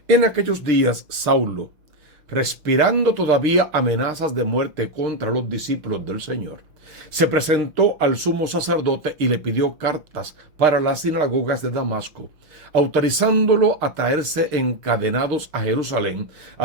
En aquellos días, Saulo, respirando todavía amenazas de muerte contra los discípulos del Señor, se presentó al sumo sacerdote y le pidió cartas para las sinagogas de Damasco, autorizándolo a traerse encadenados a Jerusalén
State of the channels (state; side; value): late; left; 6.5 ms